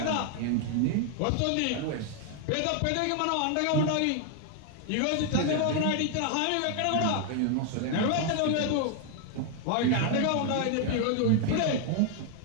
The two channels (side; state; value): both; different; correlation 0.00